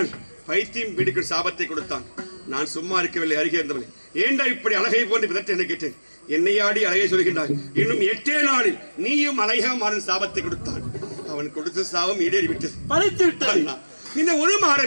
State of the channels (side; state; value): both; inverted; correlation -1.00